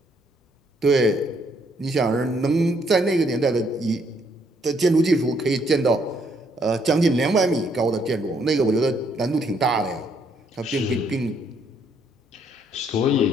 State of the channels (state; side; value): normal; both; correlation 0.70